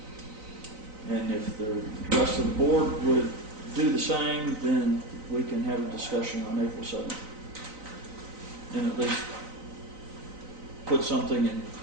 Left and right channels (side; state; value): left; late; 3.9 ms